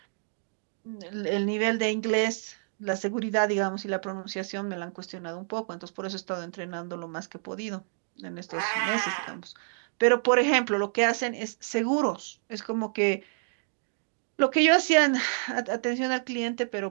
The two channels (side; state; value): left; silent; digital silence